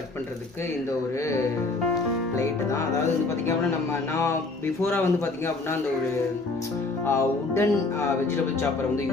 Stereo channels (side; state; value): right; quieter; 3.5 dB